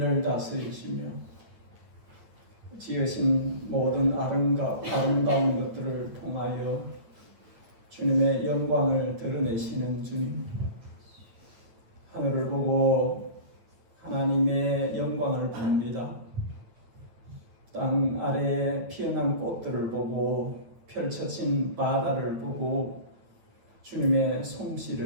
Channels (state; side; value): late; left; 9.0 ms